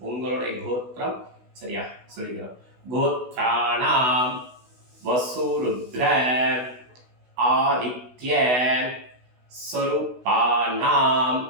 உங்களுடைய கோத்திரம் சரியா சொல்லிக்கணும். கோத்ராணாம் வசுருத்ர ஆதித்ய ஸ்வரூபானாம்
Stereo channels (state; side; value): late; left; 16 ms